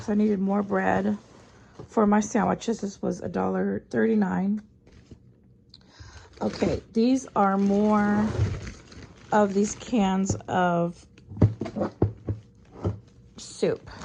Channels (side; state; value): both; identical; correlation 1.00